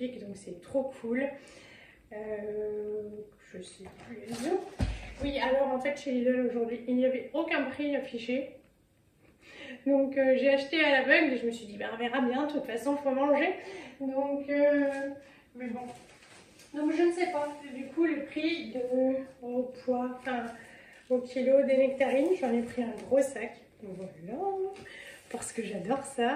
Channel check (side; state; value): both; identical; correlation 1.00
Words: donc c'est trop cool. Je sais plus les autres. Oui, alors en fait chez Lidl aujourd'hui il n'y avait aucun prix affiché. Donc j'ai acheté à l'aveugle et je me suis dit ben, on verra bien, de toute façon faut manger. Donc mais bon. Donc je ne sais pas, du coup le prix au poids, enfin au kilo des nectarines, j'en ai pris un gros sac, voilà, parce que j'adore